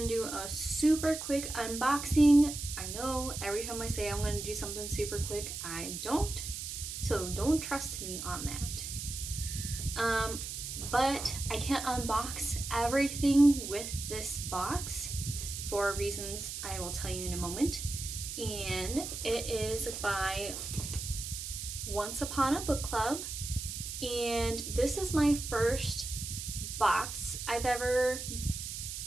do a super quick unboxing. I know every time I say I'm gonna do something super quick, I don't. So don't trust me on that. But I can't unbox everything with this box for reasons I will tell you in a moment. And it is by Once Upon a Book Club. And this is my first box I ever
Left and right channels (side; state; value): right; noise; hiss, 6 dB below the sound